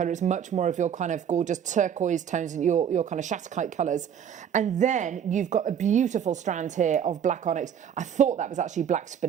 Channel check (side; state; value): left; quieter; 8.6 dB